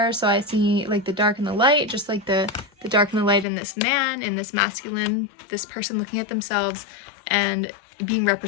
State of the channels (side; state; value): right; drops out; at 3.5 s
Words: So I see like the dark and the light, just like the dark and the light in this man, in this masculine, this person looking at themselves and being